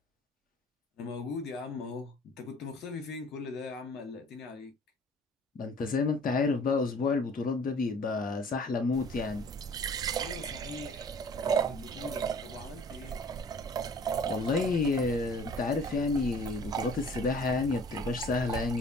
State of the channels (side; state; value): both; normal; correlation 0.50